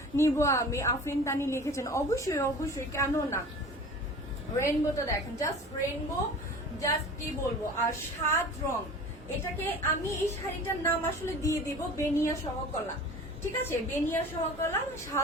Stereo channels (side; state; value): both; normal; correlation 0.39